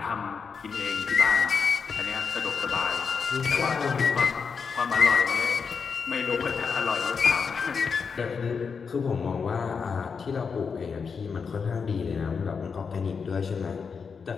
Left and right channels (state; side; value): quieter; right; 5.7 dB